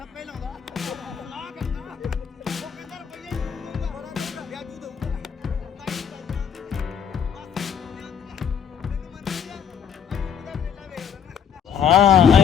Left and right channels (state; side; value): quieter; right; 7.7 dB